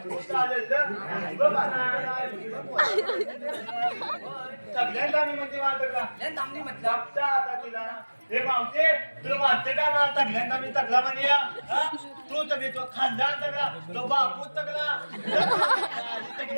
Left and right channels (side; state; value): both; inverted; correlation -1.00